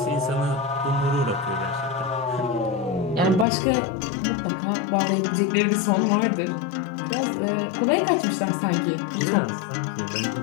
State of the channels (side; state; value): right; drops out; at 3.5 s